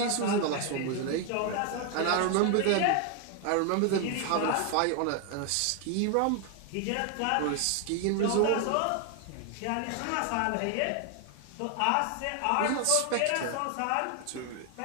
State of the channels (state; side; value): different; both; correlation 0.00